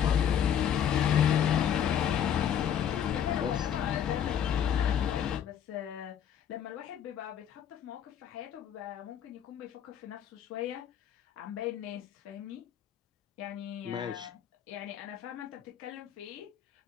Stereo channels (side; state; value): right; quieter; 9.2 dB